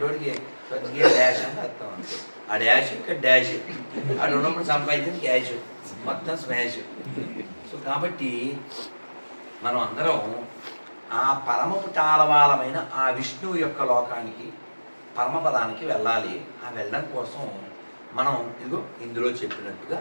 వాడికి స్వర్గీయ డాష్ అని అర్థం. అంతే, ఆ డాష్ ఇక్కడ డాష్, ఆడు ఉన్నప్పుడు సంపాదించిన క్యాష్, మొత్తం స్మాష్. సో కాబట్టి మనం అందరం ఆ పరమపు టాలవాలమైన ఆ విష్ణువు యొక్క లోకానికి, పరమపదానికి వెళ్ళాలి. ఆ వెళ్ళడం కోసం మనం ఇదిగో ఇందులో చెప్పినట్టుగా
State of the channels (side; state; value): both; inverted; correlation -1.00